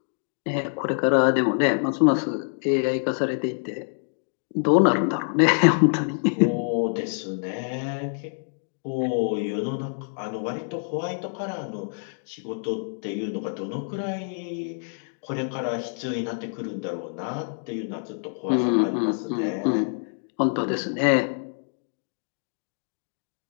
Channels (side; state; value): right; silent; digital silence